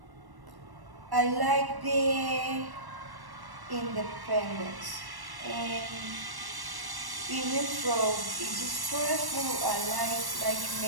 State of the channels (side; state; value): left; late; 1.1 ms